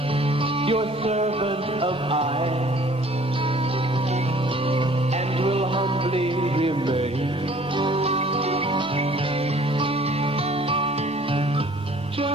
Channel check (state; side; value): normal; both; correlation 0.54